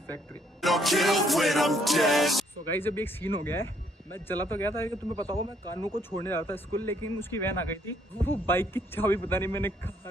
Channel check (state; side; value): normal; both; correlation 0.68